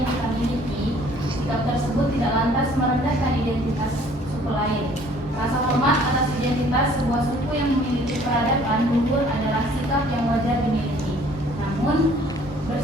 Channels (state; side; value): normal; both; correlation 0.56